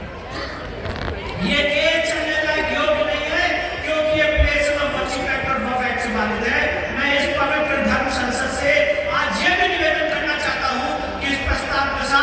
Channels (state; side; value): identical; both; correlation 1.00